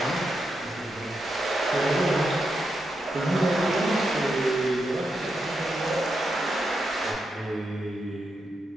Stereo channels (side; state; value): both; normal; correlation 0.85